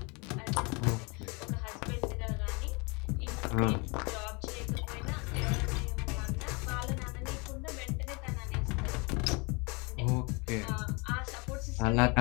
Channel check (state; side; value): quieter; right; 29.8 dB